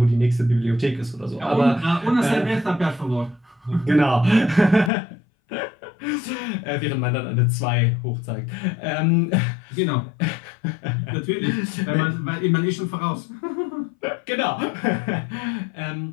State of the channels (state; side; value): drops out; right; at 4.9 s